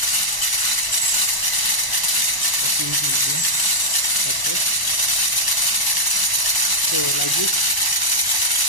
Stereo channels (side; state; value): right; late; 1.0 ms